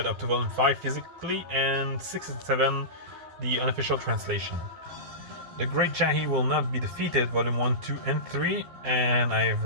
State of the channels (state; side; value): late; left; 12 ms